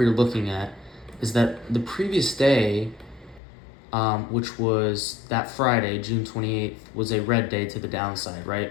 were looking at is that the previous day, which was that Friday, June 28th, was a red day to the downside,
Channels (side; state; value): right; drops out; at 3.4 s